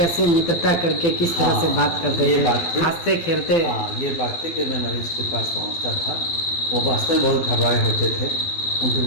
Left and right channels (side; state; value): right; late; 12 ms